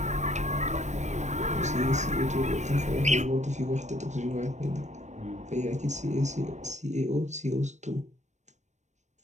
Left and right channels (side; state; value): left; late; 0.34 ms